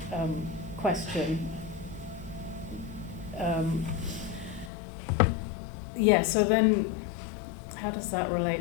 question. So then how does that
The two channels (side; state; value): right; drops out; at 4.7 s